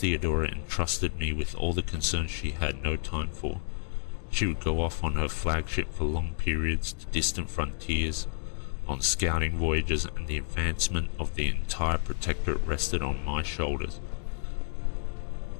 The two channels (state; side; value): silent; right; digital silence